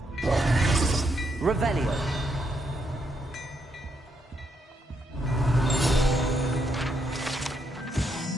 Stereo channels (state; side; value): normal; both; correlation 0.78